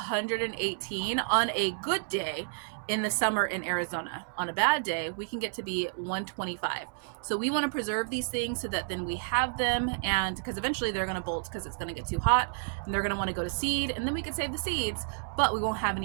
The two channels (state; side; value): silent; left; 57 dB below the other